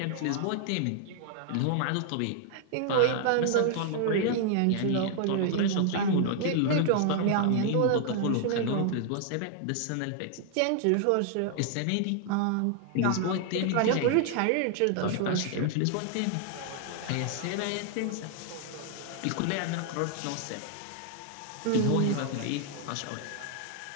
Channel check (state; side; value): different; both; correlation 0.00